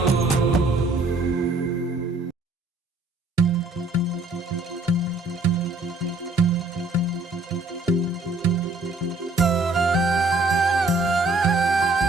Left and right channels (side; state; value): left; quieter; 3.1 dB